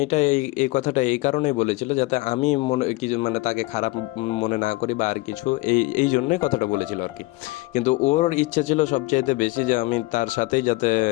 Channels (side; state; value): right; quieter; 22.2 dB